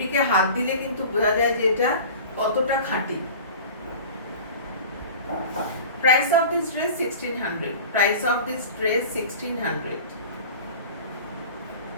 হাত দিলে কিন্তু বোঝা যায় যে এটা কতটা খাঁটি। Price of this dress 1600. Price of this dress 1600.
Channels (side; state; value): both; inverted; correlation -0.38